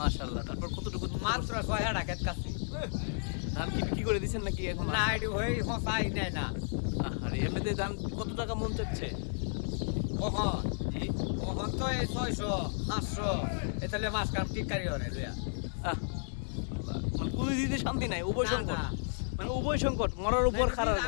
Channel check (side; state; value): right; silent; digital silence